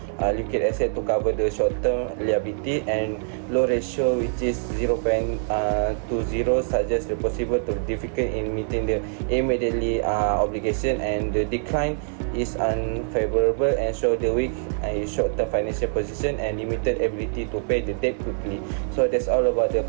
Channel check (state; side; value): silent; left; 57 dB below the other